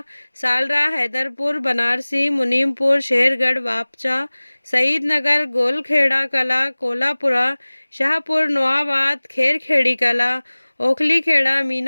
सालरा, हैदरपुर, बनारसी, मुनीमपुर, शेरगढ़, वापचा, शहीद नगर, गोलखेड़ा कला, कोलापुरा, शाहपुर, नोआबाद, खेरखेड़ी कला, ओखली खेड़ा,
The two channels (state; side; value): inverted; both; correlation -1.00